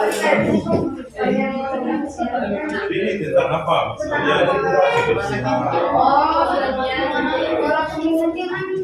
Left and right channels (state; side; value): identical; both; correlation 1.00